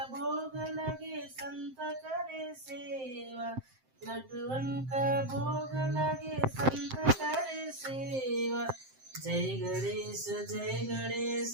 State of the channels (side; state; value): left; late; 7.7 ms